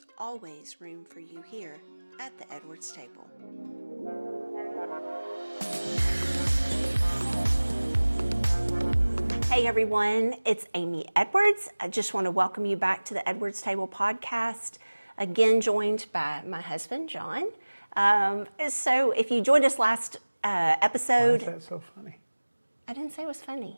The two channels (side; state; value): both; inverted; correlation -1.00